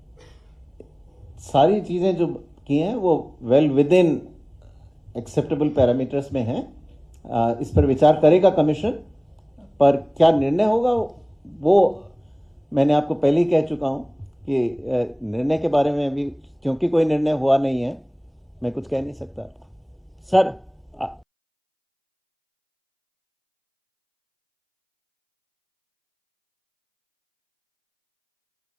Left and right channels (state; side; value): identical; both; correlation 1.00